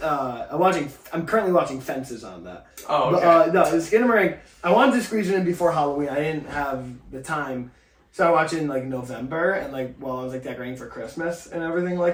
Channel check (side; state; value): both; identical; correlation 1.00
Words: okay. I'm currently watching Fences on that. Oh, okay. But, no, Skinamarink, I wanted to squeeze it in before Halloween. I didn't have the time. So I watched it in November and while I was decorating for Christmas and everything